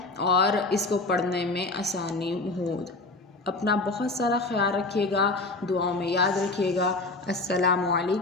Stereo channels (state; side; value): quieter; right; 3.3 dB